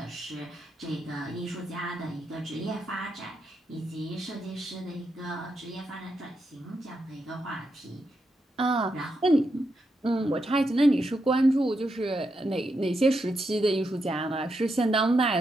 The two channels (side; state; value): both; normal; correlation 0.83